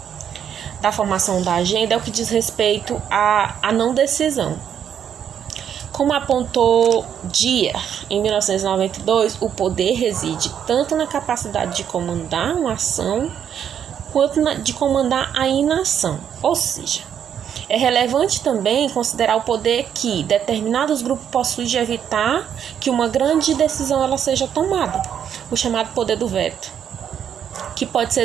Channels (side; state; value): left; quieter; 8.8 dB